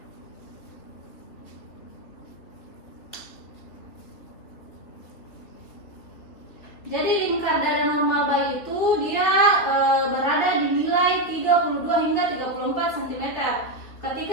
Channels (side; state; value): right; late; 3.2 ms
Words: Jadi lingkar dada normal bayi itu dia berada di nilai 32 hingga 34 cm.